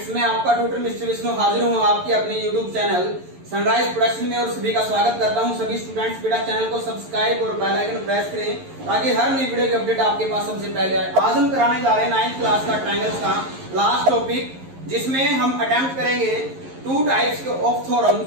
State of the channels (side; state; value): left; late; 11 ms